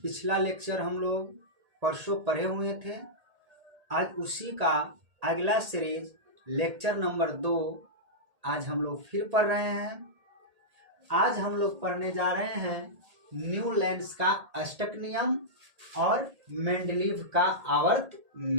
पिछला लेक्चर हम लोग परसों पढ़े हुए थे। आज उसी का अगला सीरीज लेक्चर नंबर 2 आज हम लोग फिर पढ़ रहे हैं। आज हम लोग पढ़ने जा रहे हैं न्यूलैंड्स का अष्टक नियम और मेंडलीव का आवर्त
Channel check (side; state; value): left; late; 1.8 ms